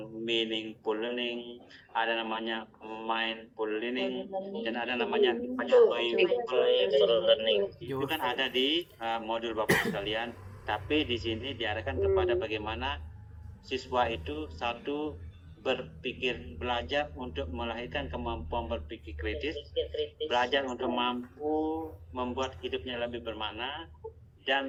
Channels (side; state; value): both; identical; correlation 1.00